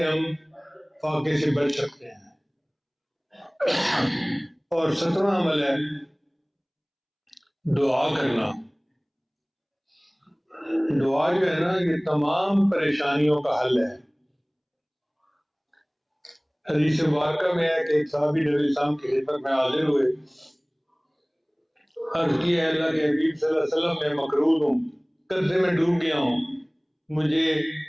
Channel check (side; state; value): both; identical; correlation 1.00